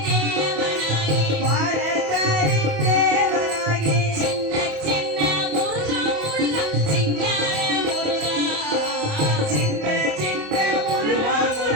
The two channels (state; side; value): late; left; 28 ms